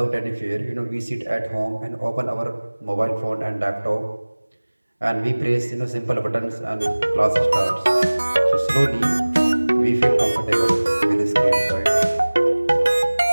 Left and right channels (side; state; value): both; inverted; correlation -1.00